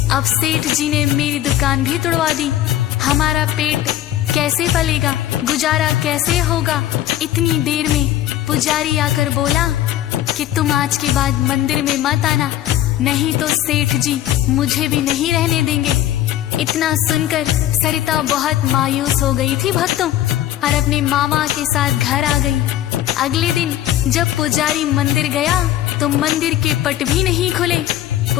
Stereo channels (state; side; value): quieter; right; 13.0 dB